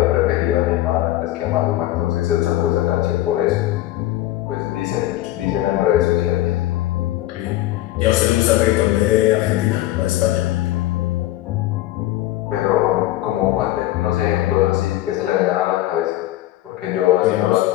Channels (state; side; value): quieter; right; 15.3 dB